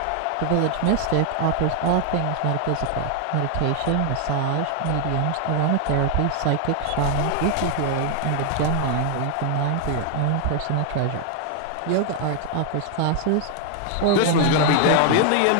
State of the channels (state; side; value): different; both; correlation 0.00